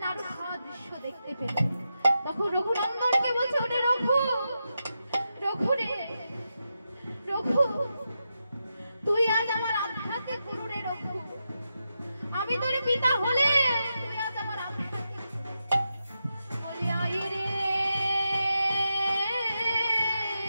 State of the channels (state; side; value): inverted; both; correlation -0.87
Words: নাড়ু খাওয়া দৃশ্য দেখতে পেল। তখন রঘুনন্দনকে বলছে ওরে রঘু, রঘু রে রঘু, তুই আজ আমার আধ্যাত্মিক গুরু রে রঘু। আমি তোর পিতা হলে তুই আজ আমার আধ্যাত্মিক বলে আয় রে